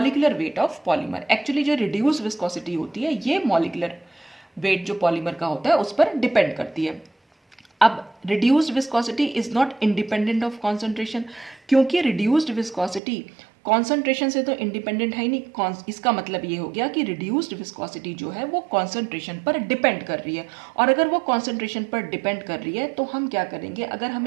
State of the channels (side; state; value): left; drops out; at 13.0 s